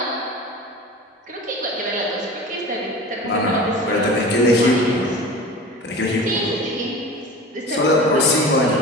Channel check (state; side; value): normal; both; correlation 0.35